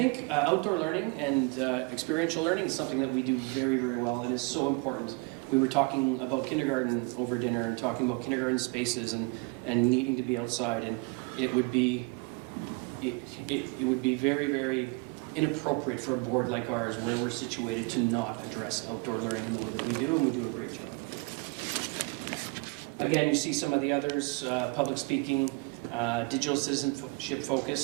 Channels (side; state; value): left; quieter; 28.7 dB